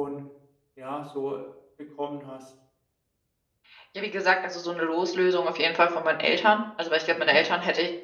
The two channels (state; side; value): identical; both; correlation 1.00